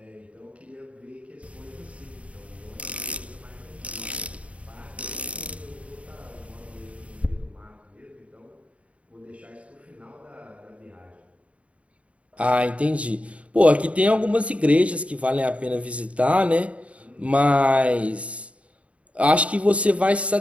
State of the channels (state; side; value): late; left; 0.064 ms